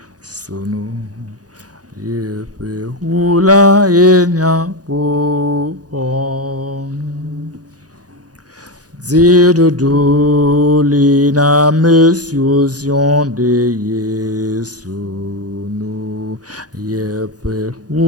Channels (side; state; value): left; late; 0.68 ms